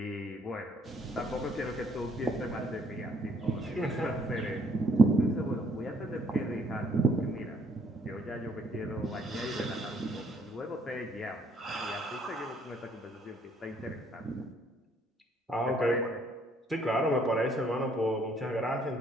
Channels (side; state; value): both; normal; correlation 0.65